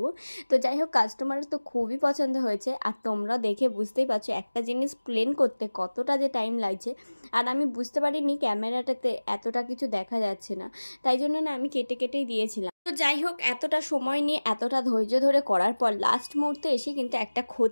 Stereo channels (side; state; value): both; inverted; correlation -1.00